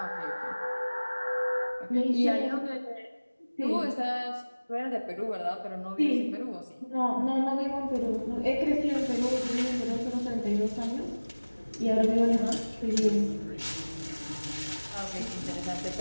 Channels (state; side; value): inverted; both; correlation -1.00